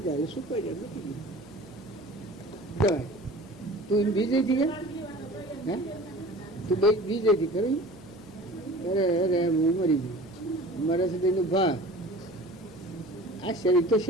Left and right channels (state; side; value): noise; right; hum, 23 dB below the sound